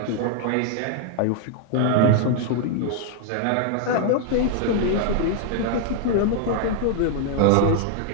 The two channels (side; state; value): both; different; correlation 0.00